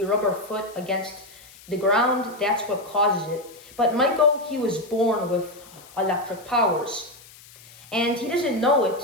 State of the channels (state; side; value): noise; left; hiss, 22 dB below the sound